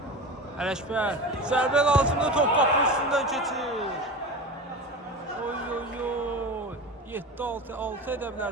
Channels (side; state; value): both; normal; correlation 0.29